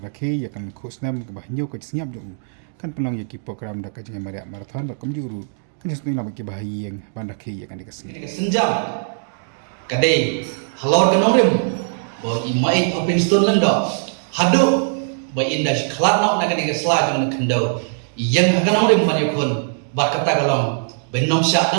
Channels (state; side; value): silent; left; digital silence